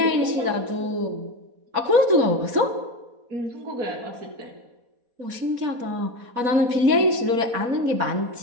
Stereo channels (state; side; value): late; left; 4.1 ms